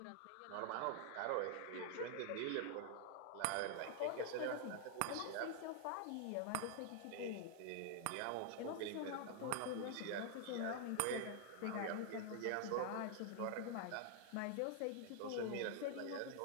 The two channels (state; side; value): different; both; correlation 0.00